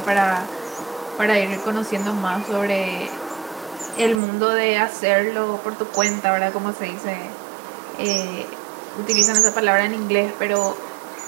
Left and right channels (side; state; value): left; drops out; at 4.2 s